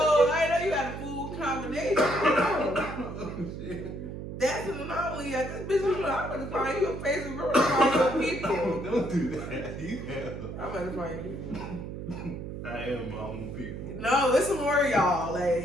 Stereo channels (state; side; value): noise; right; hum, 8 dB below the sound